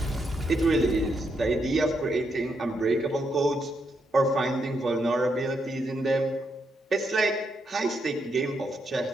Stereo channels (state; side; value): normal; both; correlation 0.79